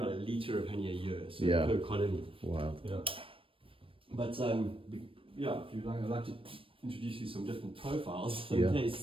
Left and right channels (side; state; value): left; late; 0.26 ms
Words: about a liter of honey a year, so per colony. Wow. Yeah. But yeah, if you'd like, I'd like to introduce you some different profiles in